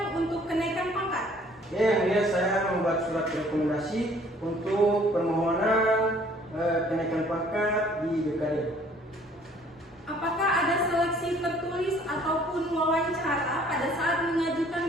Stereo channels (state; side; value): normal; both; correlation 0.57